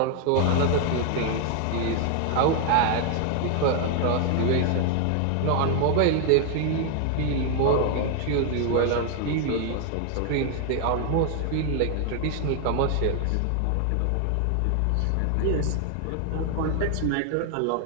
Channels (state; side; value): different; both; correlation 0.00